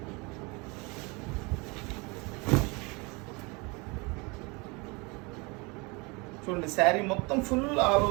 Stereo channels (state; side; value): quieter; left; 27.8 dB